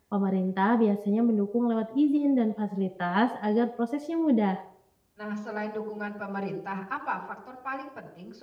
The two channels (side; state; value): both; identical; correlation 1.00